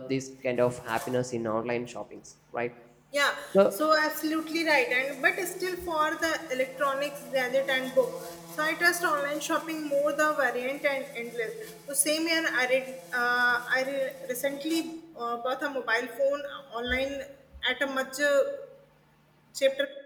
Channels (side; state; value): both; identical; correlation 1.00